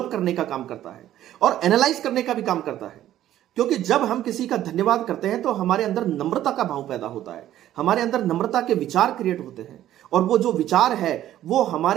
करने का काम करता है और एनालाइज करने का भी काम करता है। क्योंकि जब हम किसी का धन्यवाद करते हैं तो हमारे अंदर नम्रता का भाव पैदा होता है, हमारे अंदर नम्रता के विचार क्रिएट होते हैं, और वो जो विचार है वो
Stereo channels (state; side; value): quieter; left; 12.6 dB